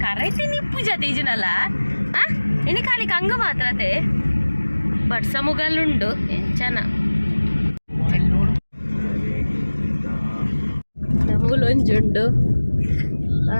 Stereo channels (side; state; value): both; inverted; correlation -1.00